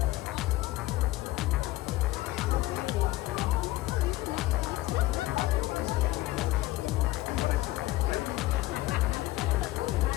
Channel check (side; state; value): right; quieter; 17.3 dB